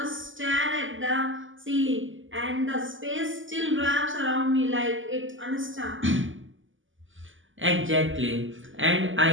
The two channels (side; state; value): left; late; 0.57 ms